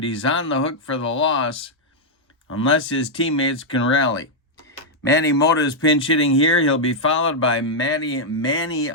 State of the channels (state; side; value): normal; both; correlation -0.03